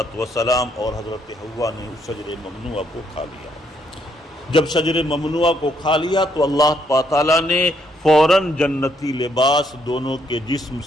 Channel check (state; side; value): normal; both; correlation 0.72